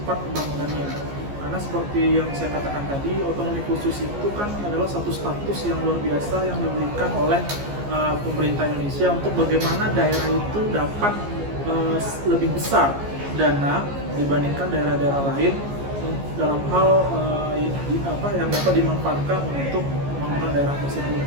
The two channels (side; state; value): left; late; 14 ms